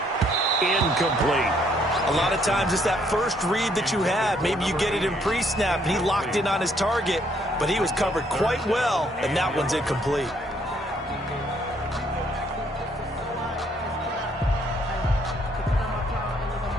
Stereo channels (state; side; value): normal; both; correlation 0.68